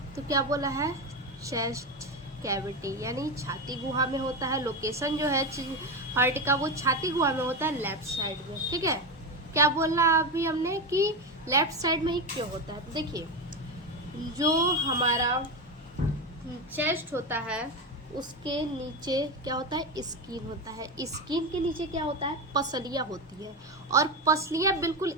तो क्या बोला है, चेस्ट कैविटी, यानी छाती गुहा में होता है। लोकेशन जो है हार्ट का वो छाती गुहा में होता है, लेफ्ट साइड में, ठीक है। क्या बोलना अभी हमने कि लेफ्ट साइड में ही क्यों होता है, तो देखिए, जो हमारा चेस्ट होता है उसके नीचे क्या होता है, स्किन होता है। स्किन के नीचे क्या होता है, पसलियाँ होती है, और पसलियाँ बिल्कुल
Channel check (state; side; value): normal; both; correlation 0.15